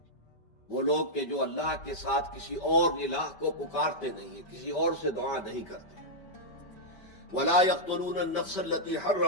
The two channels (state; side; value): late; right; 5.2 ms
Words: وہ لوگ کہ جو اللہ کے ساتھ کسی اور الہ کو پکارتے نہیں ہیں، کسی اور سے دعا نہیں کرتے، ولا يقتلون النفس التي